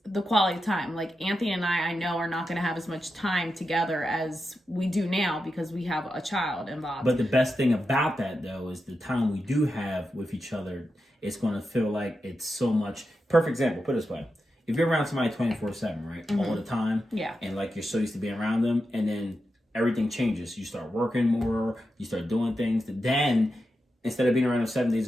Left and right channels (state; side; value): normal; both; correlation 0.89